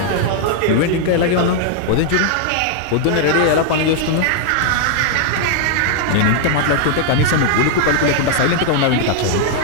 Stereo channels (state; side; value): different; both; correlation -0.01